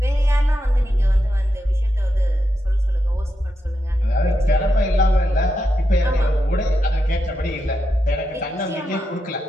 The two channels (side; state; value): both; normal; correlation 0.85